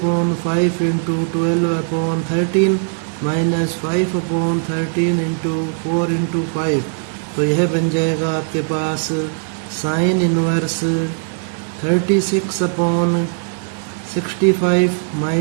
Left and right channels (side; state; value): left; silent; digital silence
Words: into 12/13 minus 5/13 into 4/5। तो यह बन जाएगा आपके पास sine inverse 36 upon 65